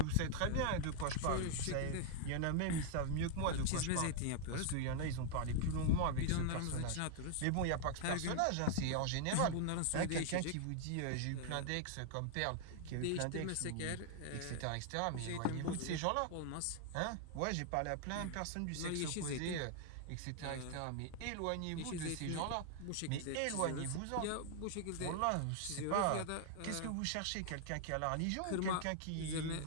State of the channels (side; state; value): both; different; correlation 0.00